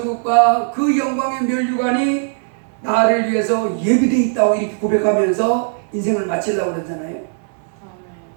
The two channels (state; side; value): silent; left; 67 dB below the other